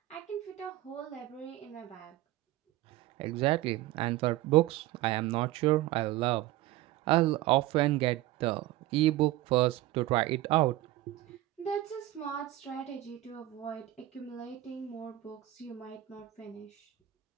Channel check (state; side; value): quieter; left; 15.8 dB